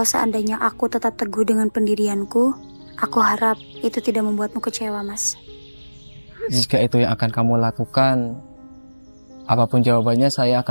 seandainya aku tetap teguh dengan pendirianku, aku harap itu tidak membuatmu kecewa, Mas. Jika itu yang akan kamu lakukan, apapun jawabannya saya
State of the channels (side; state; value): both; inverted; correlation -1.00